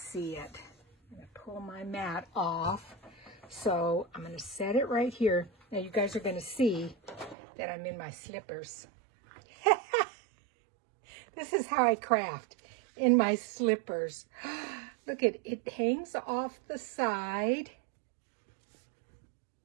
it. I'm going to pull my mat off. So I'm going to set it right here. Now you guys are going to see that I'm in my slippers. This is how I craft, in my slippers. Look at it, hangs off the side.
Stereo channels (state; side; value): drops out; left; at 7.4 s